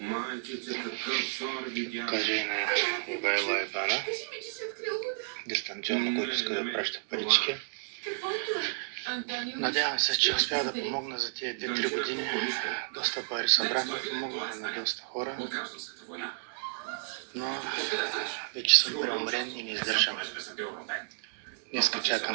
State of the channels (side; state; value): left; silent; digital silence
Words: Покажа и на Ивайло ИБАНа. Дистанционно, който иска да праща парички. Надявам се, че успя да помогна за тези 2-3 години. Доста пари събрахме, помогнаха на доста хора. Но вече съм преумрен и не издържам. Днеска